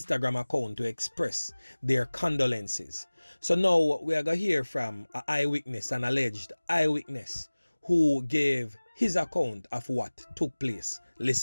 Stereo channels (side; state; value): both; inverted; correlation -1.00